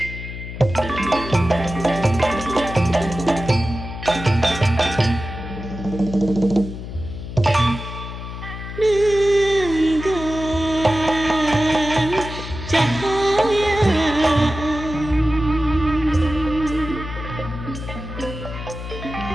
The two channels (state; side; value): noise; left; hum, 9 dB below the sound